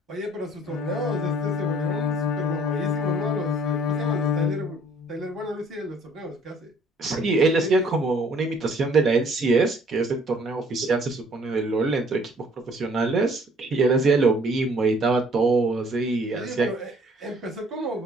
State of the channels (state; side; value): normal; both; correlation 0.58